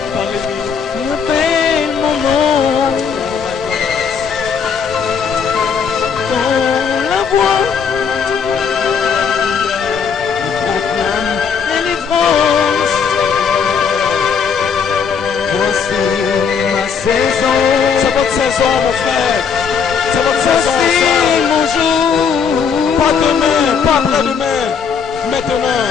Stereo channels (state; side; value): quieter; right; 6.5 dB